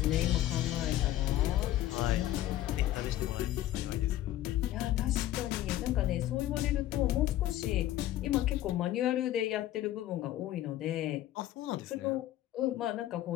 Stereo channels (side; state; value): right; quieter; 13.8 dB